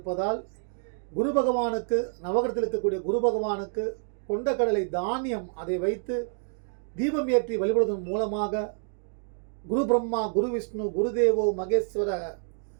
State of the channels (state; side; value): silent; left; digital silence